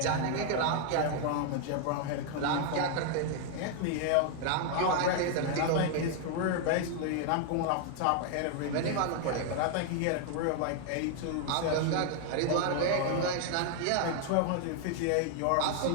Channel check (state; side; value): different; both; correlation 0.00